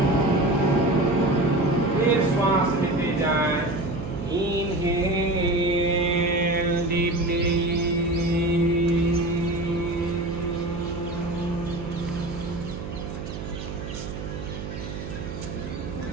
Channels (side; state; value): right; noise; hum, 8 dB below the sound